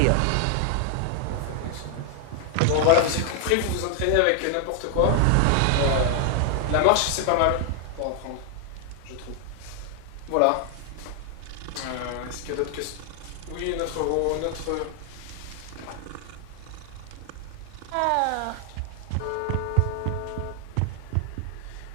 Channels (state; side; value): different; both; correlation 0.00